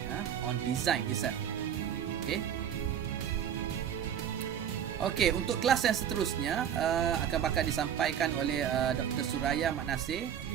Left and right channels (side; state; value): left; quieter; 9.2 dB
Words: on design itself. Okey, untuk kelas yang seterusnya akan bakal disampaikan oleh Dr. Suraya Mat Nasir.